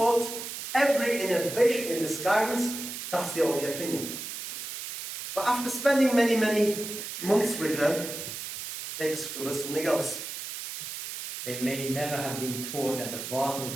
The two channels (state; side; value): noise; right; hiss, 7 dB below the sound